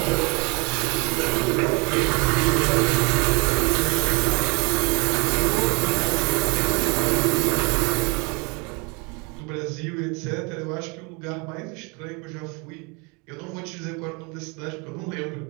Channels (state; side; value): quieter; left; 30.7 dB